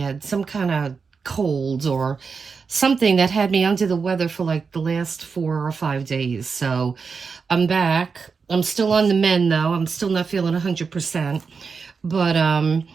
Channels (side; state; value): left; quieter; 5.2 dB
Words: some kind of cold or something that had me under the weather for like the last 4 or 5 days. So I'm back. I'm still on the mend though. I'm still not feeling 100%, but